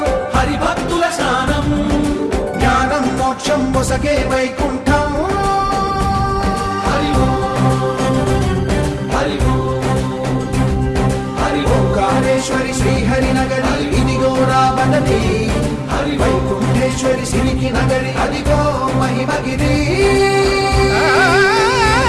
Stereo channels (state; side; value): identical; both; correlation 1.00